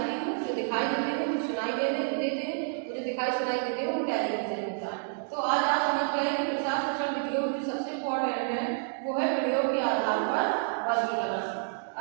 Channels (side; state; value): left; silent; digital silence